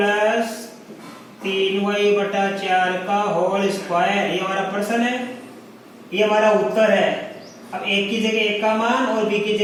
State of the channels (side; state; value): both; identical; correlation 1.00